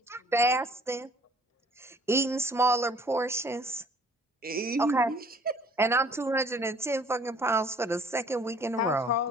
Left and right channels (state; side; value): normal; both; correlation 0.56